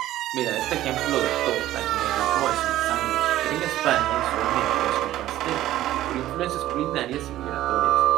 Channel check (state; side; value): quieter; left; 14.2 dB